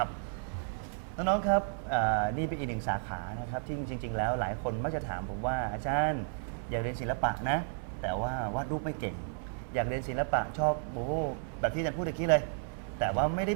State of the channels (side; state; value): left; silent; 56 dB below the other